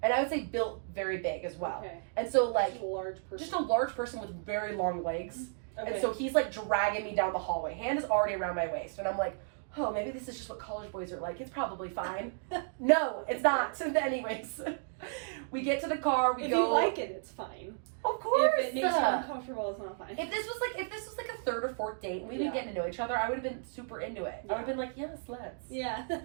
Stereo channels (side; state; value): left; silent; digital silence